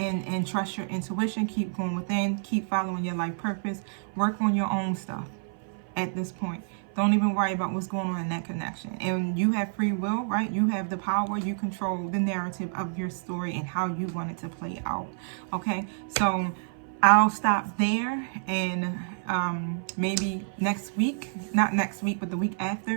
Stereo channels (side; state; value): left; silent; 56 dB below the other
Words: trust your intuition. Keep going within, keep following your life purpose. Work on your own stuff at this point. Don't even worry about what's going on in that connection. And you have free will, right? You have the power. You control the narrative of your story and how you want it to play out. Okay, so I'll stop there, and maybe next week, not next week, but the week